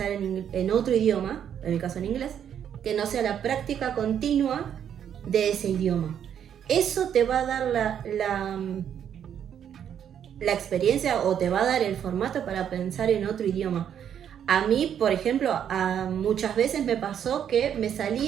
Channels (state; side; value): quieter; left; 9.0 dB